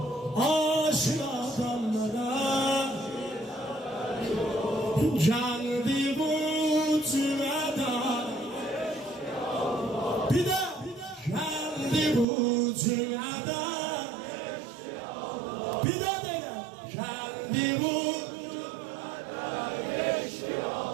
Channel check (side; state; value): left; drops out; at 12.2 s